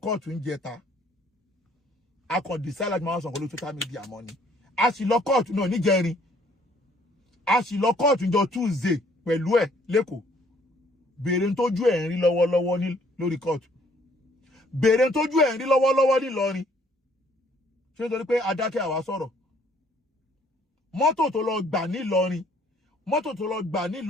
kóòtù ń jẹta akọ̀dìsá láti máa sọ̀kọ́ lórí social media mọ́ ni àṣìlọ kóòtù náà níjẹrin àṣìlọ kóòtù jọ Tuesday pẹ̀lú ẹ̀ lẹ́kọ̀ọ́ béèrè ń tójú ẹ̀ ń rí lọ́wọ́lọ́wọ́ ní lórí kóòtù béèrè ń tójú ẹ̀ ń rí lọ́wọ́lọ́wọ́ nílọrin ṣé nítorí pé adákẹ́ àwa sọ̀rọ̀ mọ́tò tó lọ gbà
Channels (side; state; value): both; normal; correlation 0.62